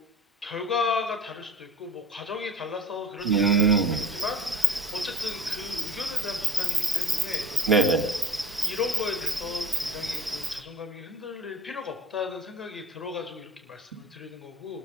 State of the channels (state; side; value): normal; both; correlation 0.40